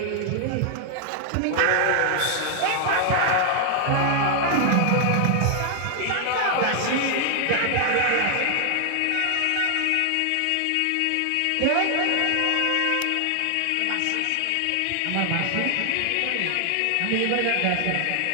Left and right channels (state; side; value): different; both; correlation 0.00